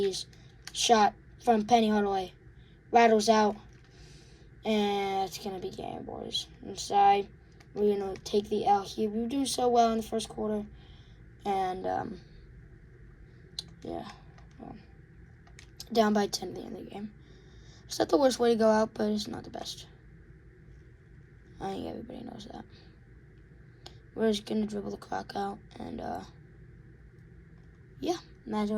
Shot from Penny Hardaway. Rattles out. And it's going to be game, boys. Inside. We're going to take the L here. We do so well in the first quarter. And, yeah. Well, down by 10 at the end of the game. It's not the worst way to go out, but it's not the best. I think everybody knows that. We're just going to dribble the clock out. And, yeah.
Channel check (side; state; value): both; identical; correlation 1.00